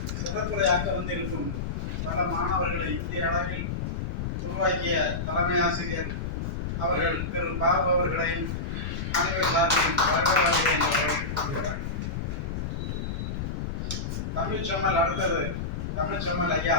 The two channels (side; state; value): left; noise; rumble, 3 dB below the sound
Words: சிறப்புரையாக்க வந்திருக்கும் பல மாணவர்களை இந்திய அளவில் உருவாக்கிய தலைமை ஆசிரியர் அவர்கள் திரு பாபு அவர்களை அனைவர் சார்பிலும் வருகை என்று வரவேற்றுக் கொள்கிறார். தமிழ்ச்செம்மல் அடுத்தது தமிழ்ச்செம்மல் ஐயா